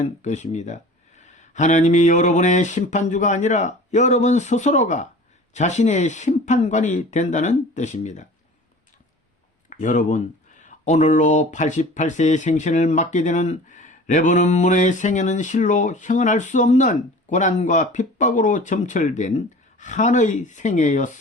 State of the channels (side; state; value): both; normal; correlation 0.42